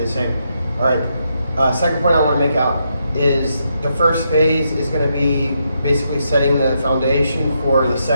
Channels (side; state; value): both; inverted; correlation -0.80